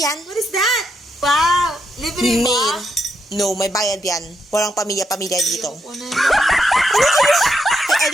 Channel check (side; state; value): both; normal; correlation 0.80